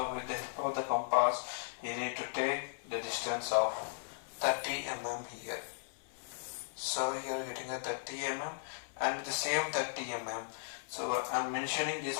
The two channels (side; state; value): right; silent; 53 dB below the other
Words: with the help of the compass, you need to take the distance of 30 mm here. So here you are getting a 30 mm, and with the same 30 mm, so I am mentioning this